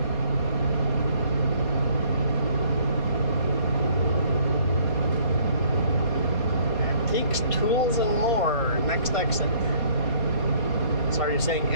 Tools and more. Next exit. So are you saying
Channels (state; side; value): late; right; 4.2 ms